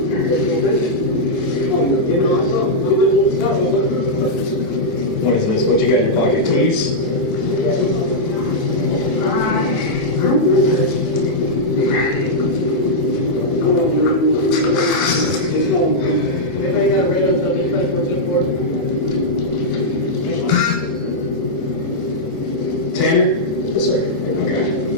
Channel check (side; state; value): left; late; 1.9 ms